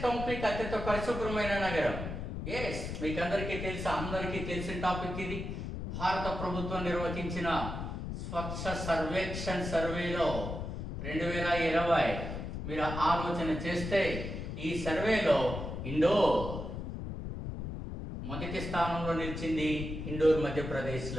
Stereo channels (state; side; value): noise; left; rumble, 6 dB below the sound